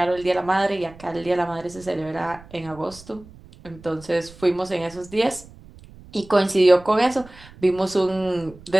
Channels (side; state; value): right; noise; rumble, 21 dB below the sound